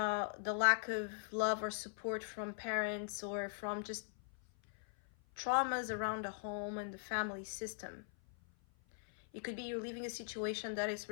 lack of love or support from parents, or from just traumas around the home and the family system. It could be you're leaving a situation that is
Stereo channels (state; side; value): silent; right; 51 dB below the other